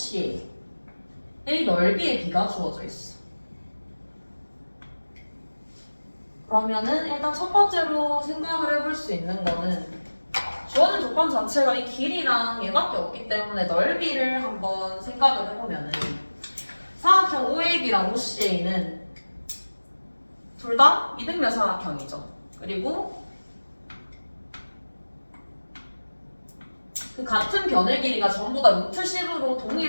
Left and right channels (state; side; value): inverted; both; correlation -1.00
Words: 넓이의 비가 주어져 있어. 그러면은 일단 첫 번째로 생각을 해볼 수 있는 거는 주어진 조건 자체가 이 길이랑 얘밖에 없기 때문에 넓이를 한번 생각을 해보면은 사각형 OAB랑 OCA는 둘 다 이등변 사각형이죠. 그리고 그 같은 변의 길이가 전부 다 루트 10으로